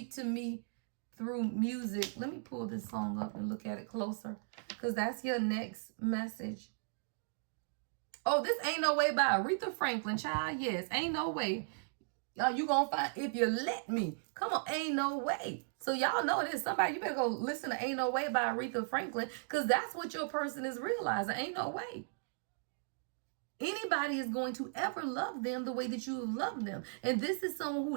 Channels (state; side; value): silent; left; digital silence